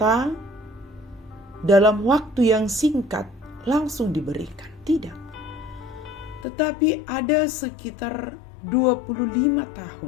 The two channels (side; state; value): right; drops out; at 6.5 s